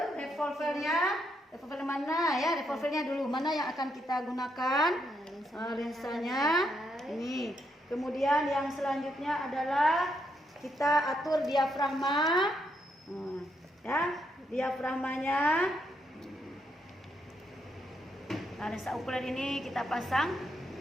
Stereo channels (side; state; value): both; normal; correlation 0.78